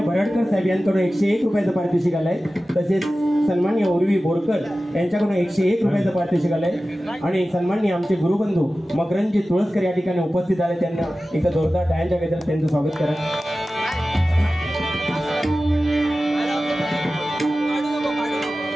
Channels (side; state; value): both; normal; correlation 0.95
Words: बराडकर साहेब यांच्याकडून 101 रुपयाचं पारितोषिक आलंय। तसेच सन्माननीय उर्वी बोरकर यांच्याकडून 101 रुपयाचं पारितोषिक आलंय आणि सन्माननीय आमचे गुरुबंधू मकरंदजी तुळसकर या ठिकाणी उपस्थित आले। त्यांना एका जोरदार टाळ्यांच्या गजरात त्यांचं स्वागत करा।